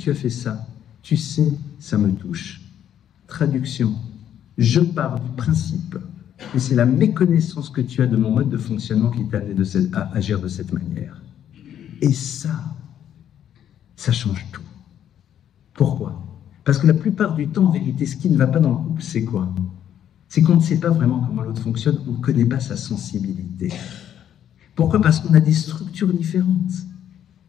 as fait ça? Tu sais, ça me touche. Traduction, je pars du principe que c'est la méconnaissance que tu as de mon mode de fonctionnement qui t'a amené à agir de cette manière. Et ça change tout. Pourquoi? Parce que la plupart du temps, en vérité, ce qui ne va pas dans le couple, c'est quoi? C'est qu'on ne sait pas vraiment comment l'autre fonctionne, on ne connaît pas sa sensibilité. Pourquoi? Parce qu'on a des structures différentes.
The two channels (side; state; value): right; quieter; 10.1 dB